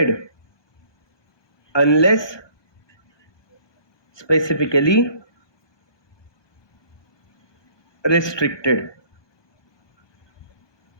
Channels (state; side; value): late; right; 1.2 ms